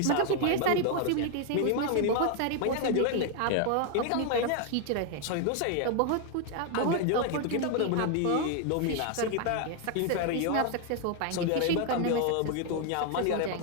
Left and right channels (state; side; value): different; both; correlation 0.00